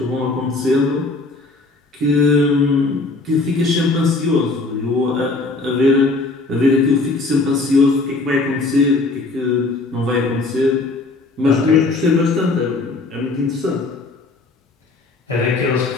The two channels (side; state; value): right; quieter; 3.4 dB